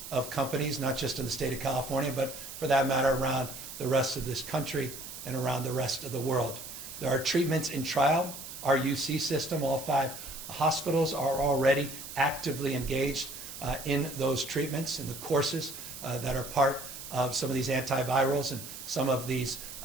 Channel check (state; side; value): noise; right; hiss, 11 dB below the sound